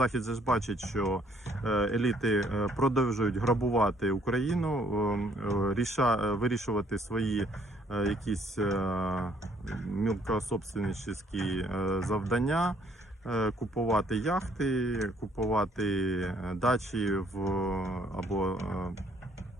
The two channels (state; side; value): normal; both; correlation 0.64